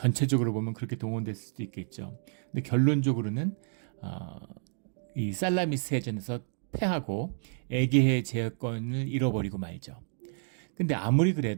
보면 그렇게 동원됐을 수도 있겠죠. 근데 결론적으로는 이 살라미스 해전에서 패하고 에게해 제어권을 잃어버리고 말죠. 근데 아무리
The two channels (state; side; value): silent; left; digital silence